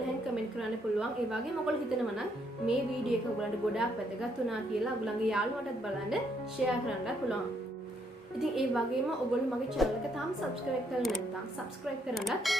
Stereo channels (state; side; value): normal; both; correlation 0.72